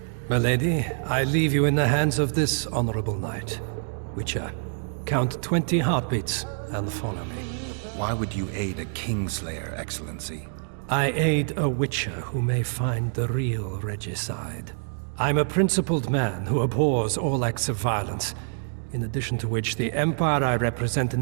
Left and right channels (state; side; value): silent; left; digital silence